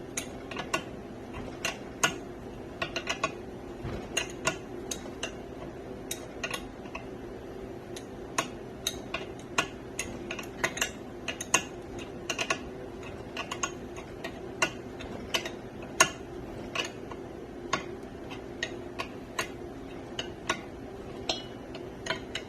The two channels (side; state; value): both; identical; correlation 1.00